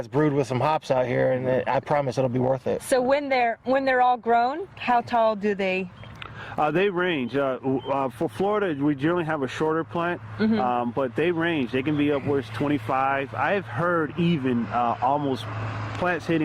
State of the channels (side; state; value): both; identical; correlation 1.00